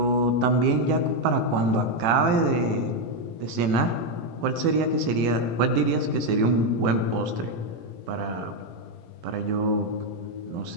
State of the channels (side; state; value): left; late; 18 ms